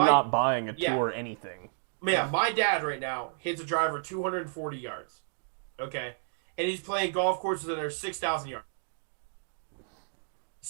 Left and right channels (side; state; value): left; silent; digital silence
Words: not buying a tour anything. Yeah, my dad right now hits a driver 240 yards. Okay. And he's playing golf courses that are 6,000 yards.